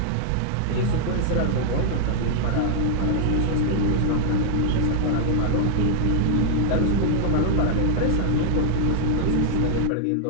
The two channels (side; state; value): both; different; correlation 0.00